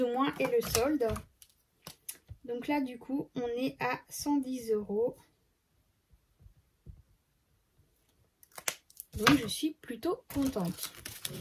ou moins, et le solde. Donc là, du coup, on est à 110 €. Donc, je suis plutôt contente.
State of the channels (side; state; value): both; identical; correlation 1.00